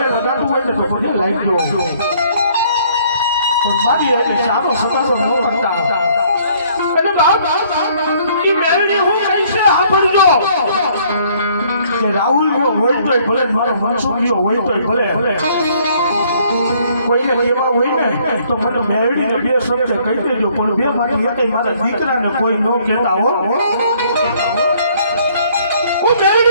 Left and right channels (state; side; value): inverted; both; correlation -0.62